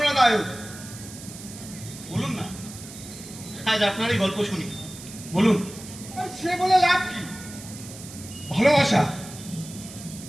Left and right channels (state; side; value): noise; right; hiss, 14 dB below the sound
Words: বলুন না, আজ আপনারই গল্প শুনি, বলুন। আর সে বলে লাভ কি? ভালোবাসা,